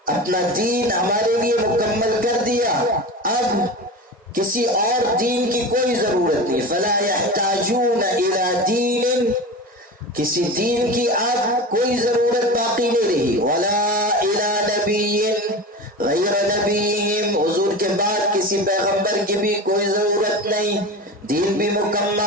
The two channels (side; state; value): both; normal; correlation 0.29